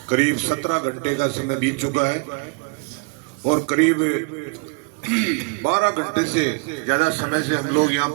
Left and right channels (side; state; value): left; quieter; 34.8 dB